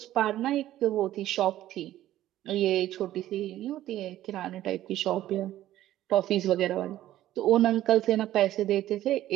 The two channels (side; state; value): left; quieter; 13.7 dB